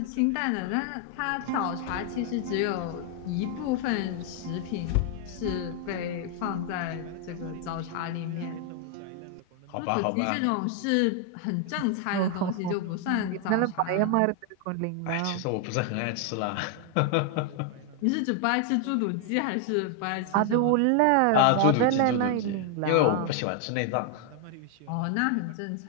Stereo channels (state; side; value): different; both; correlation 0.00